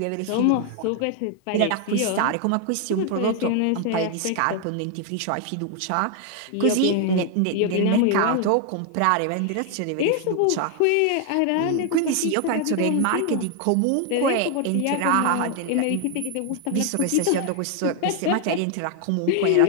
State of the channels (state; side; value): different; both; correlation 0.00